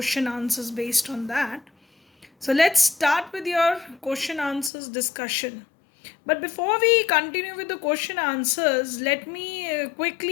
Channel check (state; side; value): drops out; right; at 4.7 s